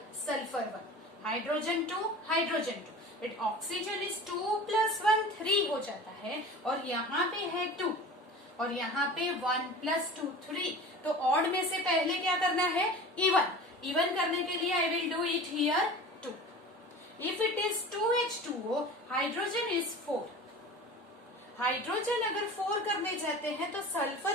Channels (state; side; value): normal; both; correlation 0.37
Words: sulfur 1. Hydrogen 2, hydrogen 2. But oxygen is 2 plus 1, 3 हो जाता है. और यहाँ पे है 2. और यहाँ पे 1 plus 2, 3. तो odd में से पहले क्या करना है? Even. Even करने के लिए I will do it here 2. If it is 2H2O, hydrogen is 4. Hydrogen अगर 4 करने जाते हैं तो